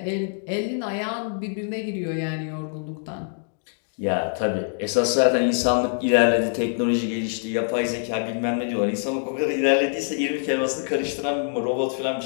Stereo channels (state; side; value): silent; right; digital silence